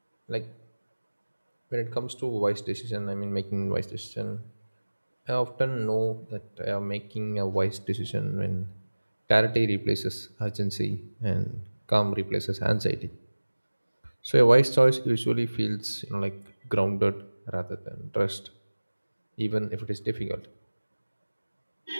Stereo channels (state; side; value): inverted; both; correlation -1.00